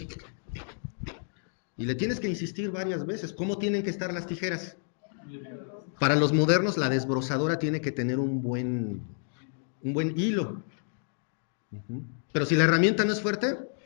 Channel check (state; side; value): silent; right; digital silence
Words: y le tienes que insistir varias veces. ¿Cómo tienen que estar las tijeras? Para los modernos, la desbrozadora tiene que tener un buen hilo. Pero si la herramienta no es fuerte,